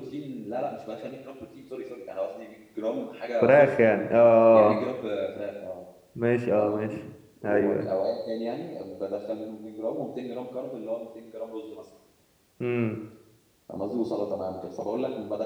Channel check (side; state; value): both; identical; correlation 1.00